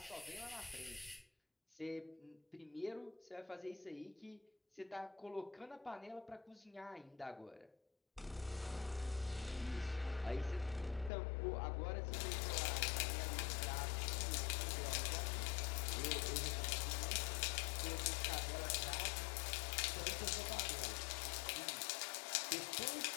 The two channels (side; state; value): right; drops out; at 11.1 s